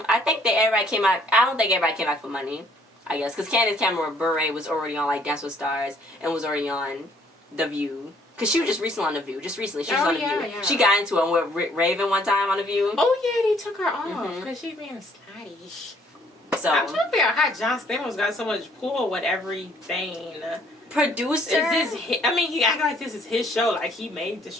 I think that everybody came out. I don't think everybody came out for money. I guess because Candace Cameron Bure was already on like Dance with Stars and was already on The View. Because she was just recently on The View. Just recently. She was on The View. Yeah. She got into it with Raven one time on The View. Oh, yeah. They took her off because she being snotty. So I'm trying to figure out how John Stamos got so much pull with everything. Producer? Is this he acted like this is his show. Like, he made the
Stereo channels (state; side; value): normal; both; correlation 0.63